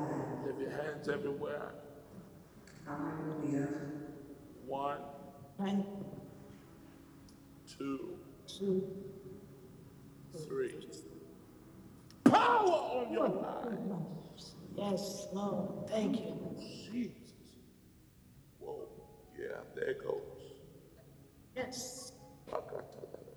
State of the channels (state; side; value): identical; both; correlation 1.00